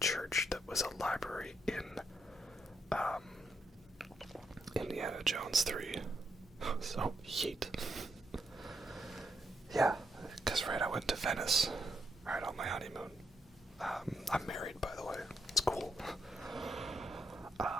church that was a library in Indiana Jones 3. So, yeet. Yeah, because right, I went to Venice, right, on my honeymoon. I'm married, by the way. It's cool.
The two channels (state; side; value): normal; both; correlation 0.78